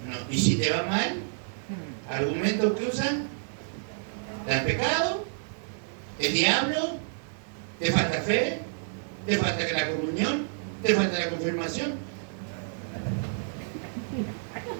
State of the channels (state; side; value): silent; left; digital silence